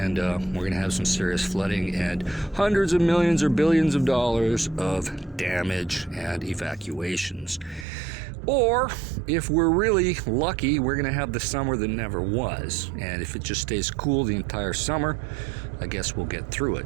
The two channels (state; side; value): drops out; left; at 7.9 s